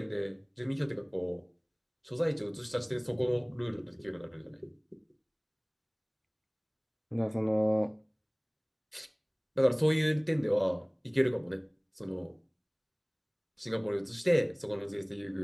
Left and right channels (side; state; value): both; identical; correlation 1.00